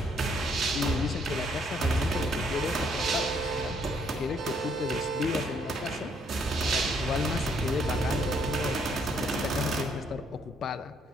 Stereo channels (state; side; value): normal; both; correlation 0.69